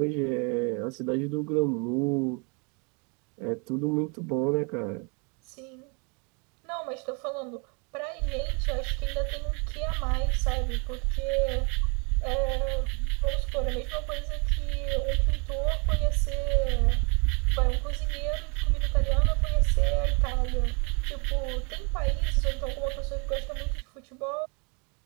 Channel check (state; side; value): quieter; left; 33.9 dB